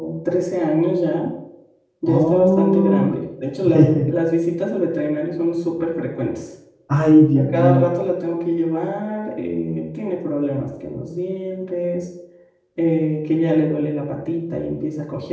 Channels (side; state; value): both; identical; correlation 1.00